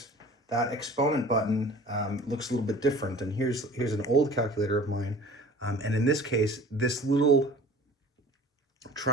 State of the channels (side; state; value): both; normal; correlation 0.44